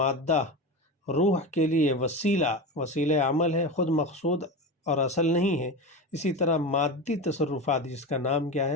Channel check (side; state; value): both; normal; correlation 0.23